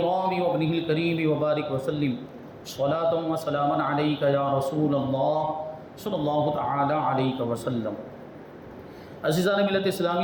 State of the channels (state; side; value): identical; both; correlation 1.00